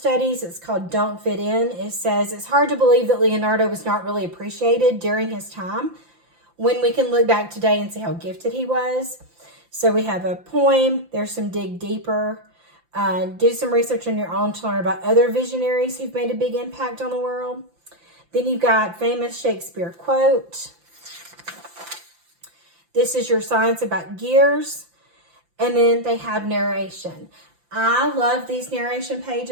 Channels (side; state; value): left; late; 5.8 ms